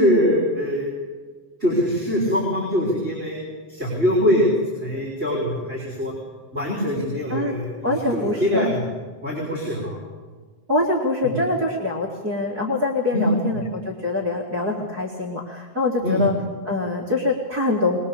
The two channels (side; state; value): left; late; 7.7 ms